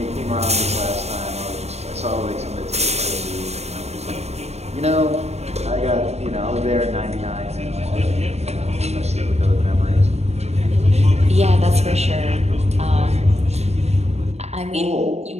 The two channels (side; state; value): left; late; 0.31 ms